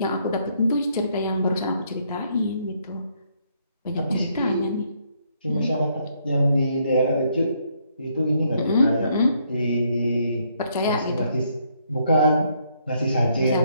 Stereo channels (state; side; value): inverted; both; correlation -0.71